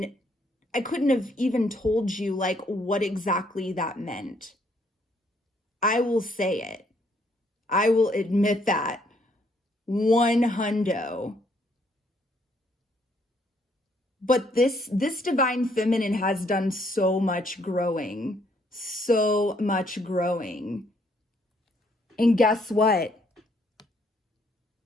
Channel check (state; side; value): normal; both; correlation 0.69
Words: I couldn't have even told you like what exactly that meant. I will say it. I will admit that. 100. But this divine feminine has done so much growing. So much growing. And guess what?